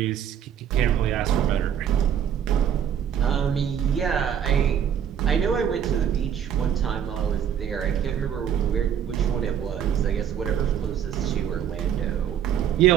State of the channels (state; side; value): quieter; left; 9.0 dB